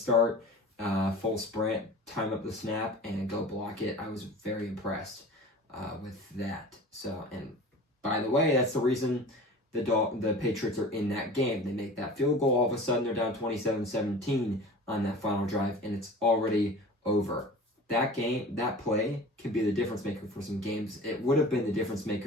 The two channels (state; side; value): normal; both; correlation 0.39